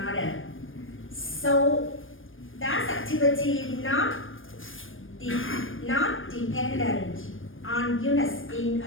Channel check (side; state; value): right; late; 0.59 ms